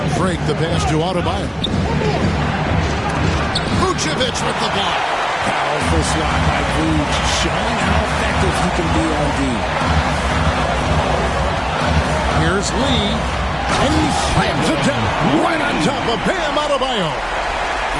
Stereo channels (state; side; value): identical; both; correlation 1.00